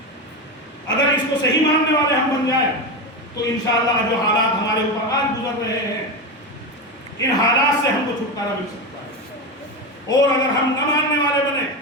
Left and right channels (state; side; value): normal; both; correlation 0.17